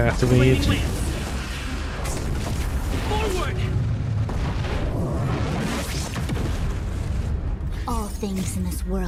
Forward! All things in this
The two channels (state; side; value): identical; both; correlation 1.00